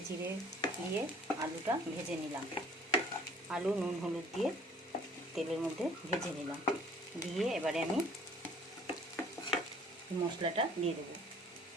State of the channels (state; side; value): normal; both; correlation 0.54